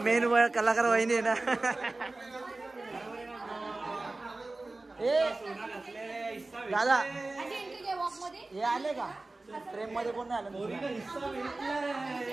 कलाकार वहिनी आहे ना. दादा हे आले का ट्रेन मध्ये? कोण नाही आलं?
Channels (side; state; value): left; quieter; 3.1 dB